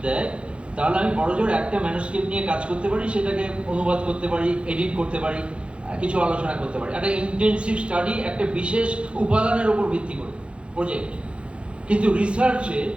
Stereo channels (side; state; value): left; late; 0.058 ms